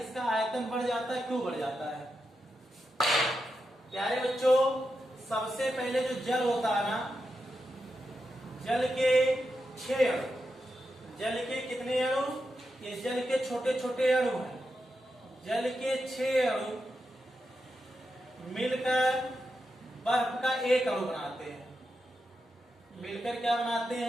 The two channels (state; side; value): normal; both; correlation 0.87